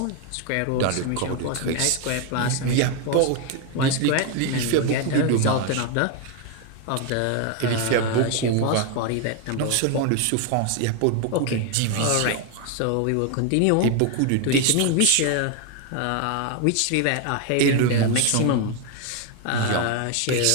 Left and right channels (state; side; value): different; both; correlation 0.01